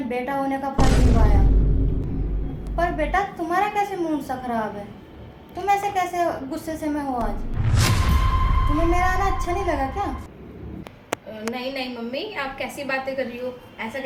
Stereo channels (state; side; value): identical; both; correlation 1.00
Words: बेटा होने का फर्ज निभाया। पर बेटा तुम्हारा कैसे मूड सा खराब है? तुम ऐसे कैसे गुस्से से में हो आज? तुम्हें मेरा आना अच्छा नहीं लगा क्या? नहीं नहीं मम्मी, आप कैसी बातें कर रही हो? ऐसा